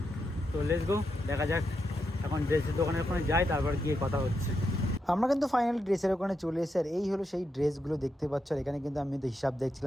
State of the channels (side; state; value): both; normal; correlation 0.84